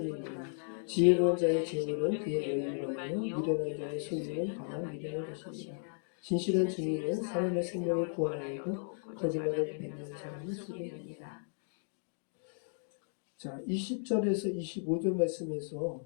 지혜로운 자의 재물은 그의 여유하며 미련한 자의 소유는 다만 미련한 것이니라. 진실한 증인은 사람의 생명을 구원하여도 거짓말을 뱉는 사람을 속이느니라. 자, 20절에서 25절 말씀에서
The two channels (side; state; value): right; silent; digital silence